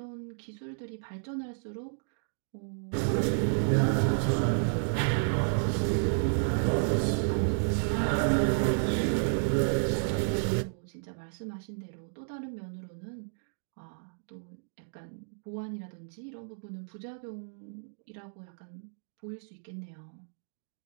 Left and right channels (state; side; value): silent; left; digital silence